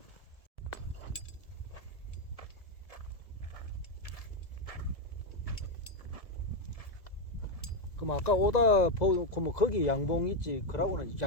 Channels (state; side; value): late; right; 1.7 ms